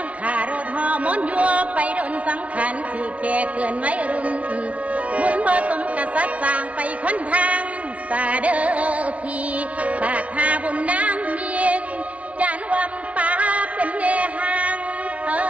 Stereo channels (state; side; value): late; left; 0.065 ms